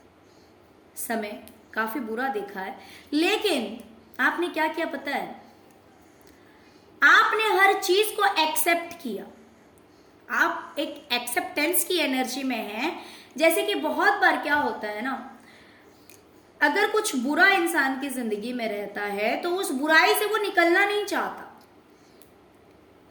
समय काफी बुरा देखा है, लेकिन आपने क्या किया पता है, आपने हर चीज को एक्सेप्ट किया। आप एक एक्सेप्टेंस की एनर्जी में हैं। जैसे कि बहुत बार क्या होता है ना, अगर कुछ बुरा इंसान की जिंदगी में रहता है तो उस बुराई से वो निकलना नहीं चाहता।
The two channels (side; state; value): both; identical; correlation 1.00